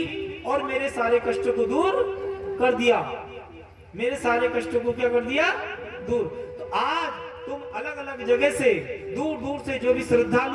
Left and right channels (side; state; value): both; identical; correlation 1.00